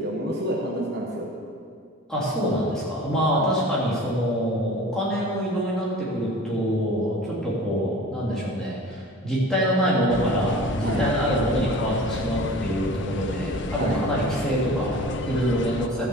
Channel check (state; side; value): normal; both; correlation 0.41